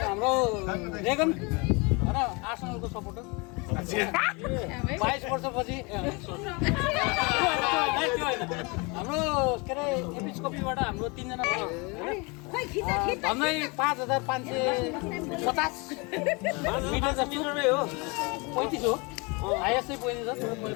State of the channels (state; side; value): quieter; right; 28.7 dB